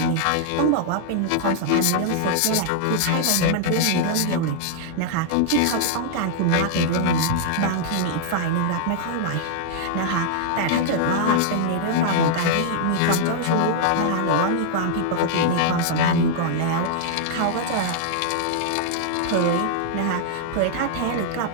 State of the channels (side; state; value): both; different; correlation -0.01